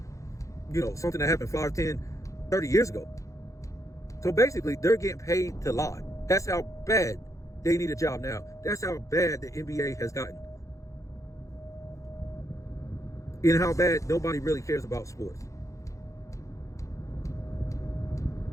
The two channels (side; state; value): right; late; 0.15 ms